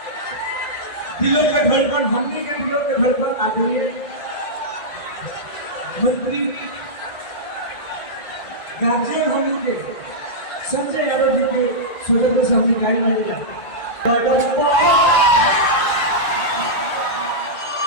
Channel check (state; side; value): late; right; 1.9 ms